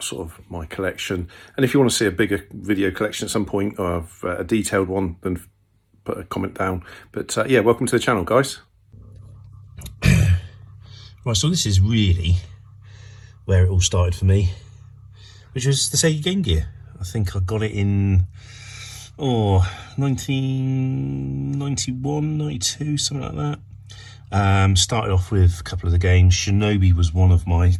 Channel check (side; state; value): both; identical; correlation 1.00